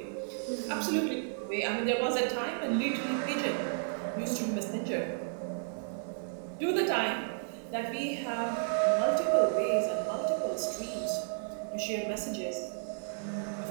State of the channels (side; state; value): left; silent; digital silence